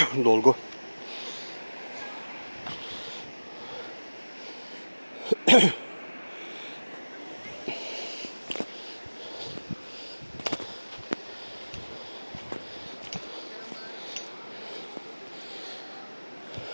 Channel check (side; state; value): both; inverted; correlation -1.00